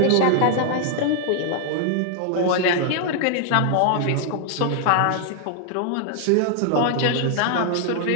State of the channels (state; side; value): different; both; correlation 0.00